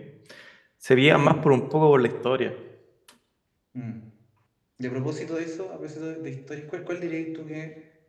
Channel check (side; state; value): both; identical; correlation 1.00